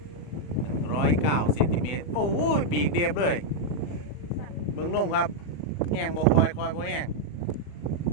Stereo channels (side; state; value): right; late; 40 ms